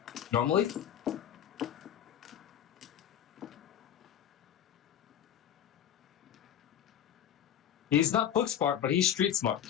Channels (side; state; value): right; quieter; 9.9 dB